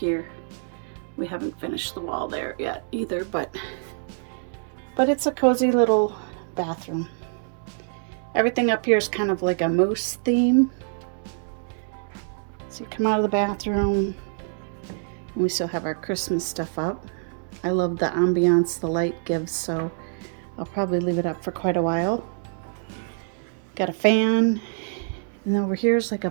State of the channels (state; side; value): silent; left; digital silence